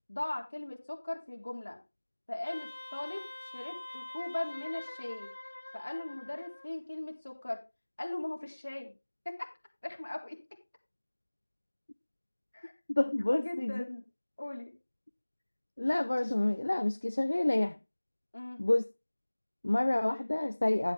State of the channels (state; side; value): inverted; both; correlation -1.00